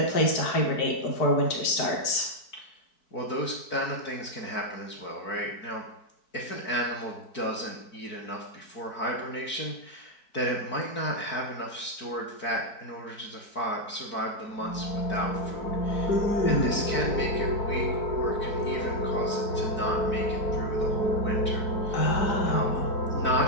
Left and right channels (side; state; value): right; late; 4.6 ms